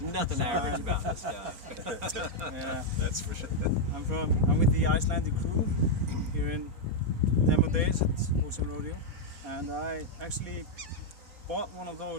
average about this guy. Yeah, That's for sure. I'm with the Icelandic crew here in demo days at Ocean Rodeo, and I actually bought one of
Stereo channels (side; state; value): left; late; 4.2 ms